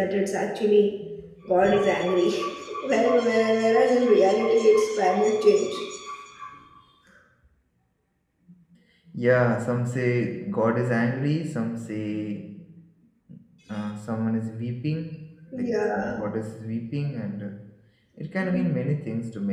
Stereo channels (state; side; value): identical; both; correlation 1.00